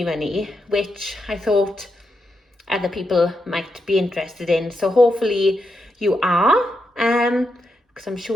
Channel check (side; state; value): both; normal; correlation 0.84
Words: money, which I thought other people might be interested in. So hopefully you are, because I'm